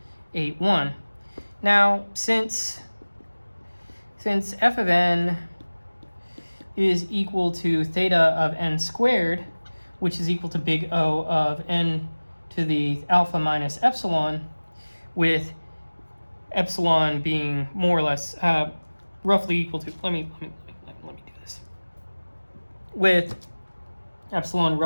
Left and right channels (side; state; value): both; inverted; correlation -1.00